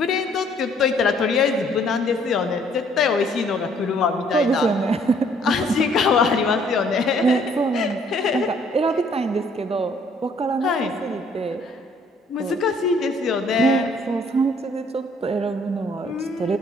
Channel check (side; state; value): both; normal; correlation 0.62